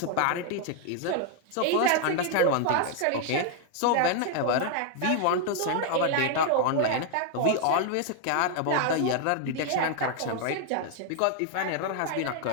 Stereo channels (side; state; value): both; different; correlation 0.00